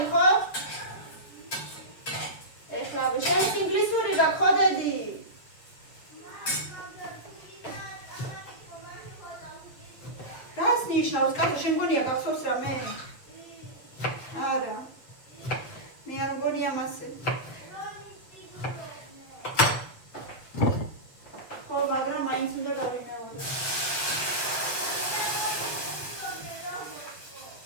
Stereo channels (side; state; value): right; late; 7.6 ms